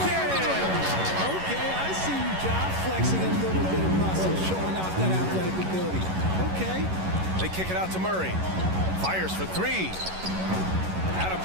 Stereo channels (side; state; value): left; late; 11 ms